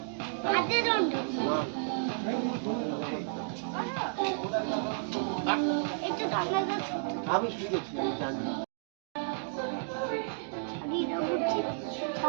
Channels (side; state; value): left; silent; digital silence